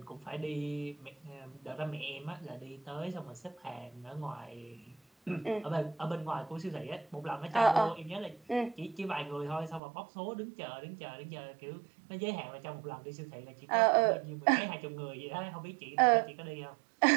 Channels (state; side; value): drops out; left; at 9.8 s